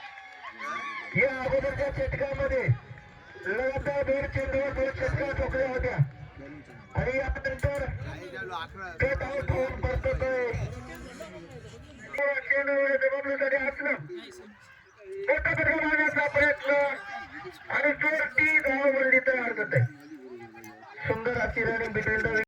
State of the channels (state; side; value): identical; both; correlation 1.00